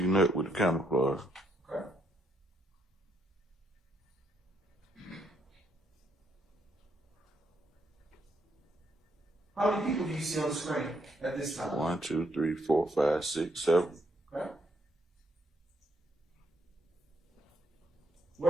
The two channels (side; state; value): both; normal; correlation 0.74